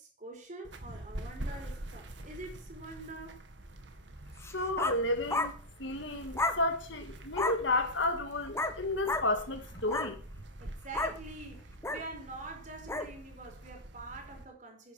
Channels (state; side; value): normal; both; correlation -0.02